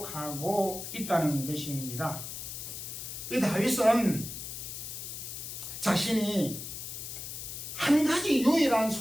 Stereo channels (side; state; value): left; noise; hiss, 8 dB below the sound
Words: 있다는 것입니다. 다윗은 자신이 한 가지 유일한